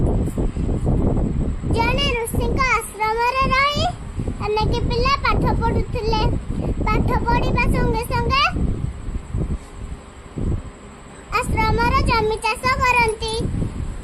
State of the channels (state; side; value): identical; both; correlation 1.00